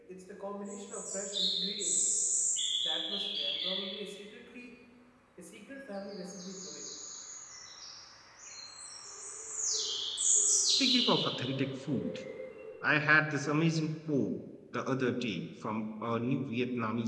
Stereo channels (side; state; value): both; identical; correlation 1.00